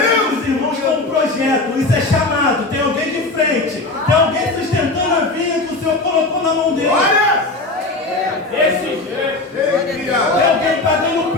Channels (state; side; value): quieter; right; 3.1 dB